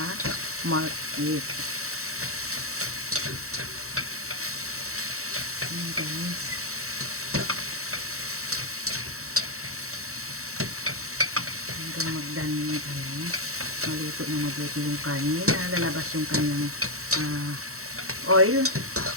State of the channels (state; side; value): late; left; 0.64 ms